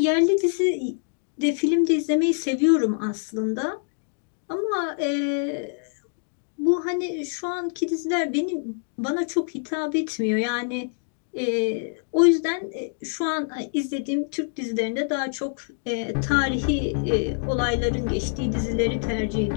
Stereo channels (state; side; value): silent; right; digital silence